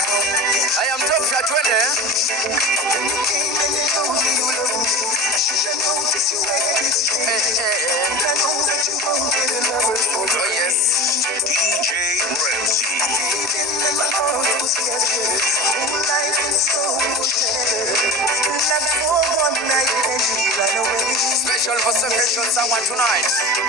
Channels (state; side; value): normal; both; correlation 0.31